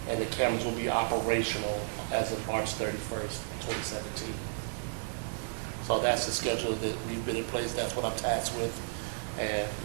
And the cameras will be operational as of March 31st, 2017. So that's the schedule that we've been in place. That's what I'm tasked with, and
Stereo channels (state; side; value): silent; left; digital silence